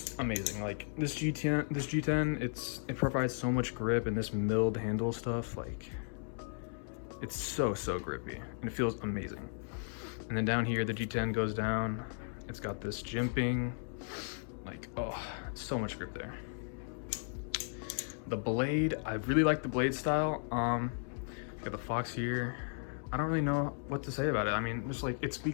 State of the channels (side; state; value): right; silent; 54 dB below the other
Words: amazing. Like this G10, it provides so much grip, and this milled handle stuff, like it's so grippy, and it feels amazing. And then down here, the G10 goes down. It's got this jimping, like, oh, so much grip there. The blade, I really like the blade style. Got the Fox here. I don't really know what to say about it. I mean, just like, it